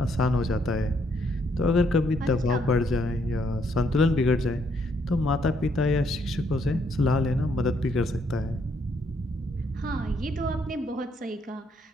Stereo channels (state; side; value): normal; both; correlation 0.71